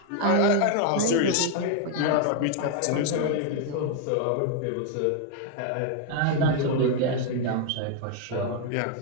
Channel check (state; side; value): different; both; correlation 0.01